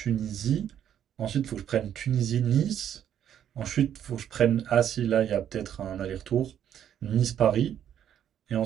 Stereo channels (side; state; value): left; quieter; 9.9 dB